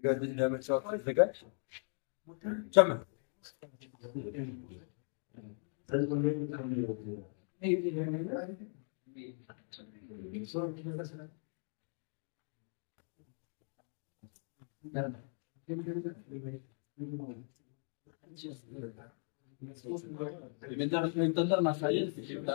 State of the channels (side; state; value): right; silent; 52 dB below the other